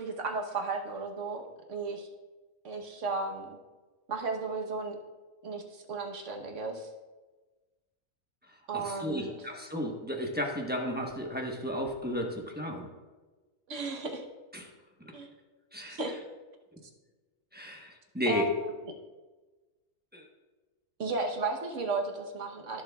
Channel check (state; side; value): normal; both; correlation 0.06